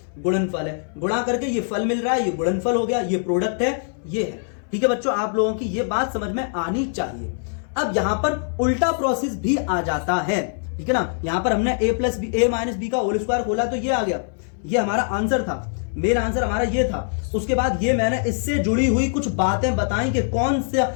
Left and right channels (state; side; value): silent; right; 60 dB below the other